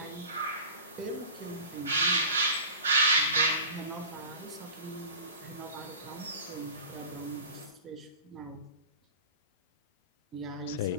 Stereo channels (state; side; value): inverted; both; correlation -0.36